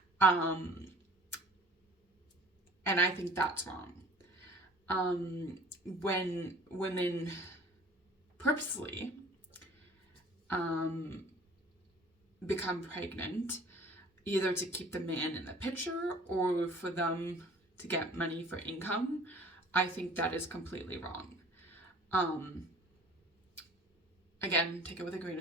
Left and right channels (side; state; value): both; normal; correlation 0.49